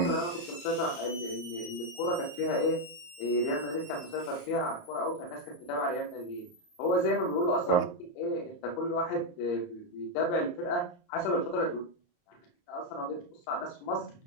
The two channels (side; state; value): right; late; 28 ms